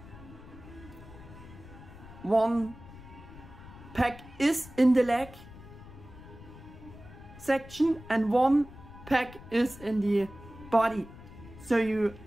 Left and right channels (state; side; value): noise; left; rumble, 17 dB below the sound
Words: One pack is in the leg section and one pack is in the body. So you